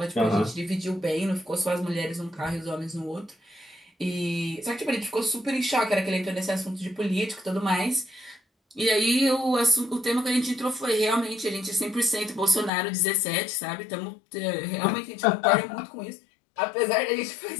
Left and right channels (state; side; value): drops out; right; at 12.7 s